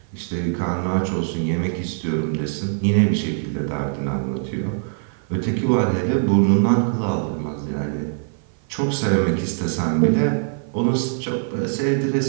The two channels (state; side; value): silent; left; 56 dB below the other